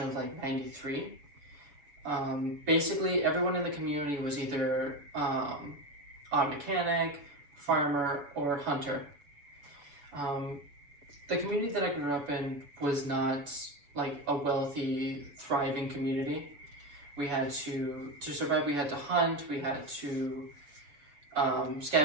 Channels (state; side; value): late; left; 6.9 ms